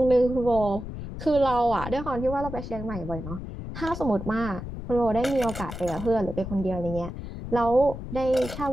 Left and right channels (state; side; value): noise; left; rumble, 9 dB below the sound